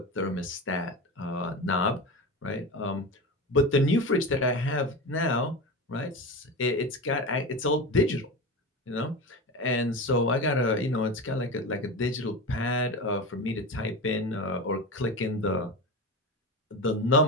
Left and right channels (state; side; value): normal; both; correlation 0.25